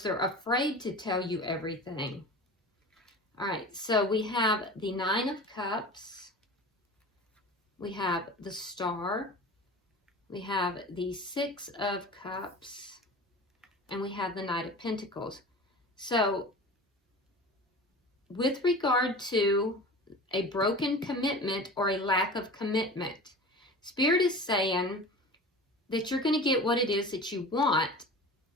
they're afraid to tell you everything. All right, so we have the Nine of Cups. We have the Star. We have the Six of Cups. And we have the Knight of Pentacles. So, with regard to a broken commitment or a lack of commitment, Spirit is saying that you're going to get what it is that you want.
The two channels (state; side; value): normal; both; correlation 0.35